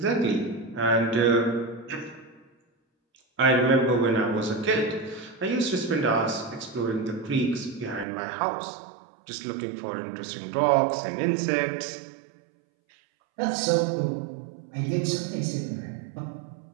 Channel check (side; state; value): left; drops out; at 8.1 s